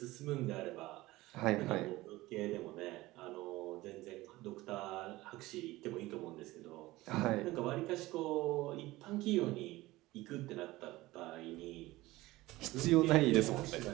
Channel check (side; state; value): left; quieter; 18.7 dB